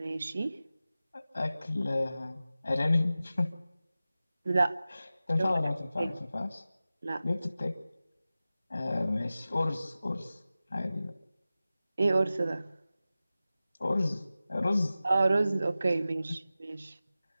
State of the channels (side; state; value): both; inverted; correlation -0.95